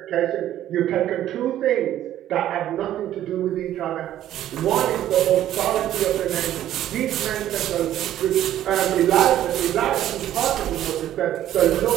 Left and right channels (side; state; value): left; quieter; 12.3 dB